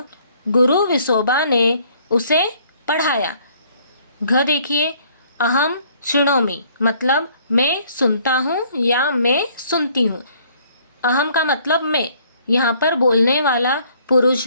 गुरु विसोबा ने उसे पढ़ाया। घ देखिए, अहम शृणोमि, मतलब मैं सुनता हूँ या मैं सुनती हूँ। अहम का मतलब मैं। यहाँ पर बोलने वाला पुरुष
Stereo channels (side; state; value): both; inverted; correlation -0.61